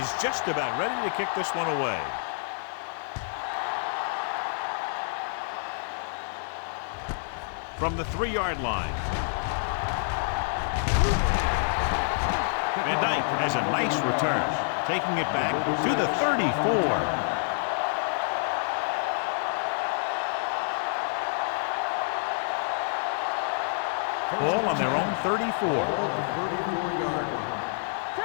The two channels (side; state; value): right; silent; digital silence